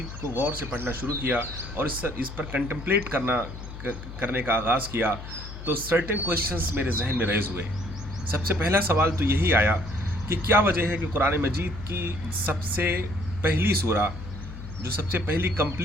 کو غور سے پڑھنا شروع کیا اور اس پر کنٹمپلیٹ کرنے کا آغاز کیا تو سرٹن کویشچنز میرے ذہن میں ریز ہوئے۔ سب سے پہلا سوال تو یہی آیا کہ کیا وجہ ہے کہ قرآن مجید کی سب سے پہلی سورہ، جو سب سے پہلی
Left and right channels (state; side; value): noise; left; hum, 11 dB below the sound